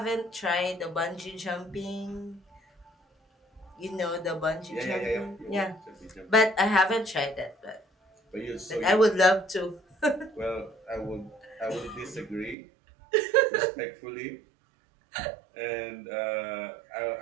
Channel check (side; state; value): left; drops out; at 12.6 s